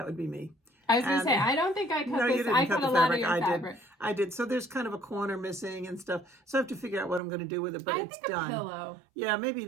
would be me. I was going to say, I don't think I cut No, this. you didn't I cut cut the a lot of fabric. your I fabric. did. I did. So there's kind of a corner missing and stuff. So I have to figure out what I'm going to do with it, but I it's think done. A pillow. Yeah, maybe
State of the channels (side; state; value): left; drops out; at 7.2 s